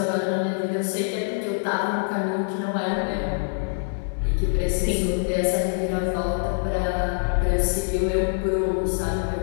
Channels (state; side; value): silent; right; digital silence